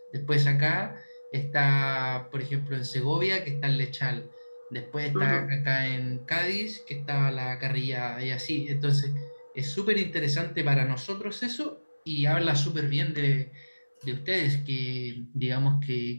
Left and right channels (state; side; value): inverted; both; correlation -1.00